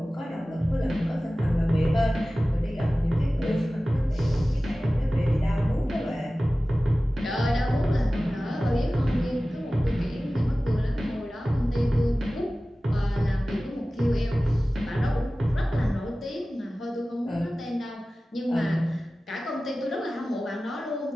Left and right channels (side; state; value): both; normal; correlation 0.96